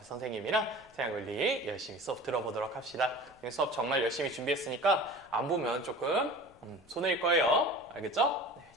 선생님이랑 생활관리 열심히 수업 들어보도록 합시다. 수업 정말 열심히 준비했으니까 안 보면 조금 손해일 거예요. 알겠죠? 네,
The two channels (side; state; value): left; noise; rumble, 29 dB below the sound